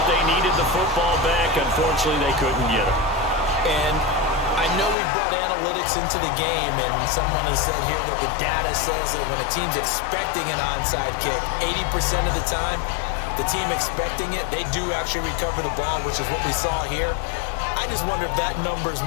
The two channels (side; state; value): right; drops out; at 5.0 s